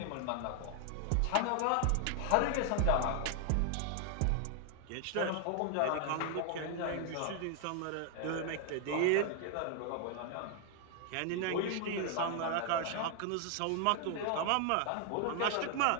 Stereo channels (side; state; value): both; different; correlation 0.00